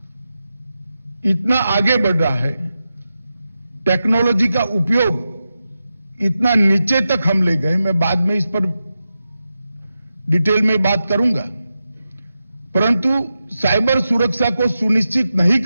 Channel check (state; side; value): inverted; both; correlation -0.90